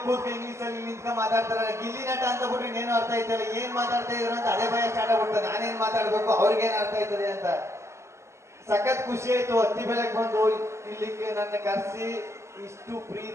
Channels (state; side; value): late; left; 0.13 ms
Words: ಕೂತ್ಕ ಇಂಗ್ಲಿಷ್ ಅಲ್ಲಿ ನಿಂತ್ಕ ಮಾತಾಡ್ತಾರೆ. ಗಿಲ್ಲಿ ನಟ ಅಂತ ಬಿಟ್ರೆ ಇನ್ನೇನು ಅರ್ಥ ಆಯ್ತಲ್ಲ, ಏನ್ ಮಾತಾಡ್ತಾ ಇದ್ರು ಅಂತ ಅದೇ ಭಯ ಸ್ಟಾರ್ಟ್ ಆಗ್ಬಿಡ್ತದೆ. ನಾನೇನ್ ಮಾತಾಡ್ಬೇಕು, ಅವ್ರಿಗೇನ್ ಅರ್ಥ ಆಯ್ತದೆ ಅಂತ. ಸಖತ್ ಖುಷಿ ಆಯ್ತು. ಹತ್ತಿ ಬೆಳಗ್ಗೆ ಬಂದು ಇಲ್ಲಿಗೆ ನನ್ನ ಕರೆಸಿ ಇಷ್ಟು